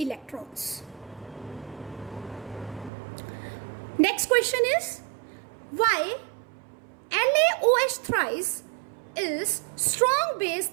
Next question is, why LaOH thrice is strong base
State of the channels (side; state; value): left; drops out; at 2.9 s